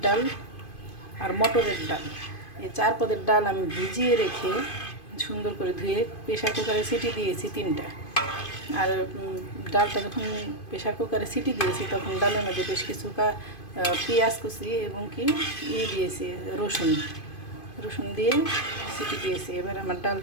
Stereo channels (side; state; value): right; late; 2.5 ms